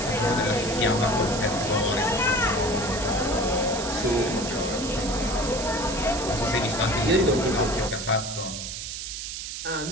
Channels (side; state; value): right; noise; hiss, 6 dB below the sound